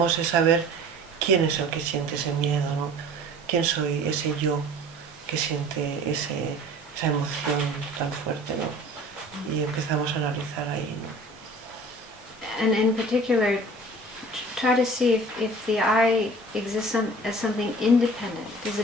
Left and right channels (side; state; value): both; normal; correlation 0.45